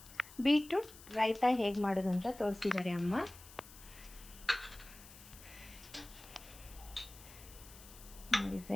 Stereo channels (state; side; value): noise; left; hiss, 18 dB below the sound